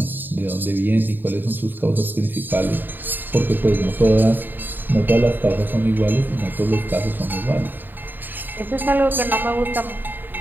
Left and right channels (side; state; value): left; late; 0.092 ms